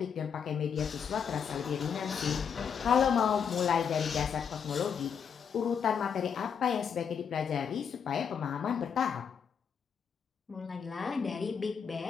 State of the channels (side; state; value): right; quieter; 7.1 dB